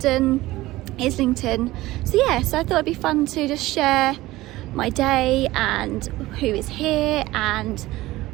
Islington. So I thought it'd be fun to just share my day and who is here and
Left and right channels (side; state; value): left; quieter; 17.7 dB